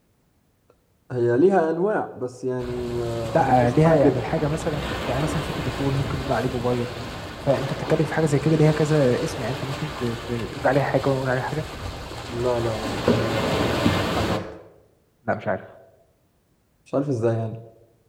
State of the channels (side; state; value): both; identical; correlation 1.00